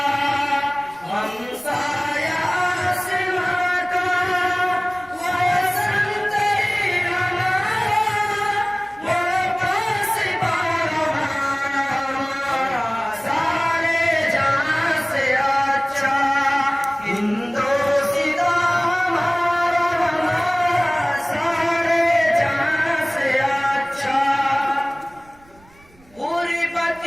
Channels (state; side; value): noise; right; rumble, 29 dB below the sound